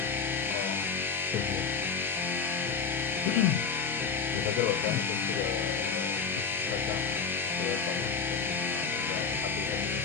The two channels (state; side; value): quieter; right; 5.6 dB